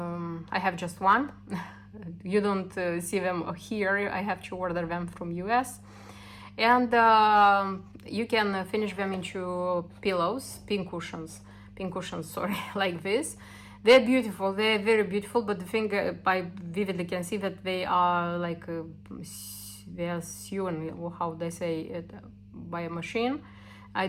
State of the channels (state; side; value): identical; both; correlation 1.00